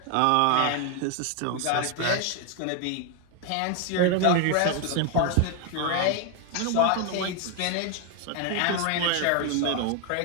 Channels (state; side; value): different; both; correlation 0.01